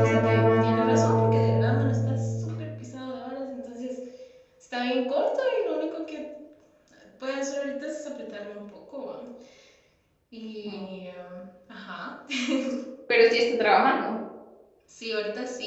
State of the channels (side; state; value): both; identical; correlation 1.00